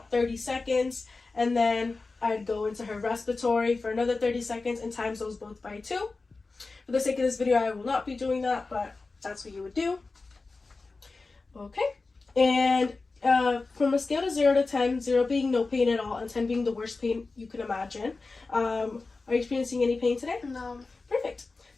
30 seconds, and then I'd go into her respiratory for another 30 seconds and times those both by 2. For the sake of this video, I will not be doing that, but that's what you would do. Okay. And from a scale of 0 to 10, 0 being no pain at all and 10 being the worst pain you can imagine, are you experiencing any pain today? No. Perfect.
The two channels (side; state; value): right; quieter; 3.8 dB